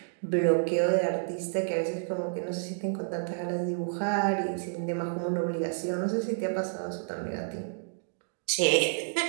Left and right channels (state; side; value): silent; left; digital silence